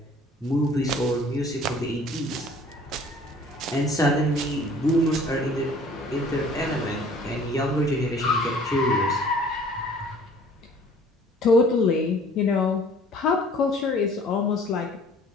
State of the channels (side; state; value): both; normal; correlation 0.52